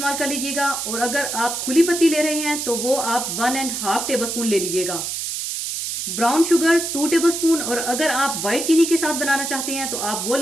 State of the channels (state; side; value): noise; right; hiss, 4 dB below the sound